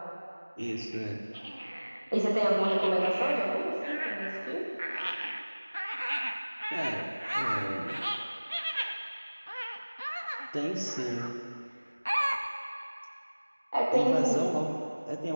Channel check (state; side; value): inverted; both; correlation -1.00